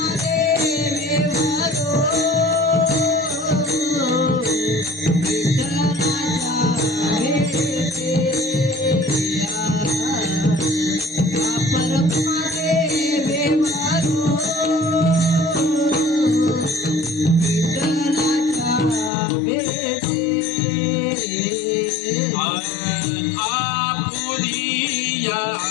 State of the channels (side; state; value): right; drops out; at 19.1 s